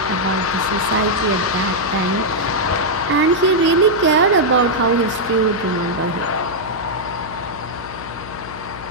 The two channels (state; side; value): noise; left; hum, 14 dB below the sound